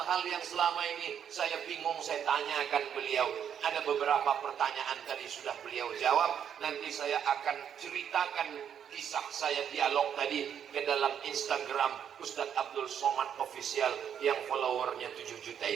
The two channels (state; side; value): quieter; left; 8.6 dB